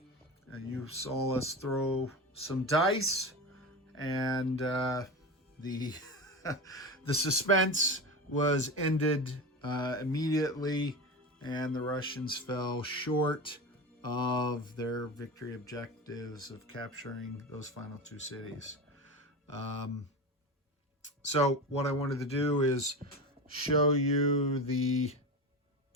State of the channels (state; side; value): normal; both; correlation 0.25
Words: you saw us throw some dice, and the the suspense was ended immediately, and the Russians fell short of their victory objectives of capturing those final two cities. So what I wanted to do is show you the